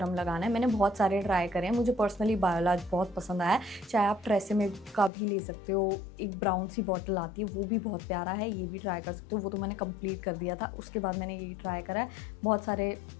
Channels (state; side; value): drops out; right; at 5.1 s